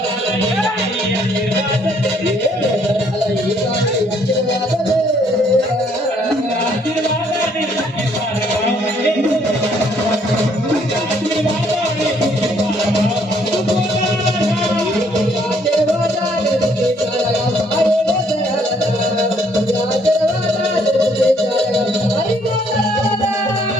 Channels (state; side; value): normal; both; correlation 0.66